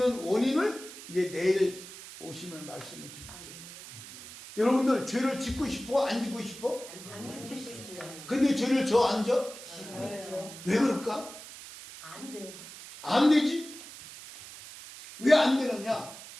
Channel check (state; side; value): noise; right; hiss, 14 dB below the sound